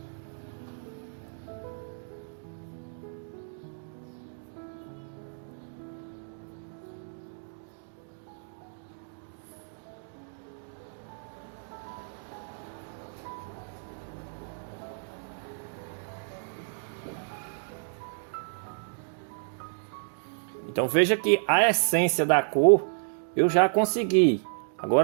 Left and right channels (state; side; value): silent; left; digital silence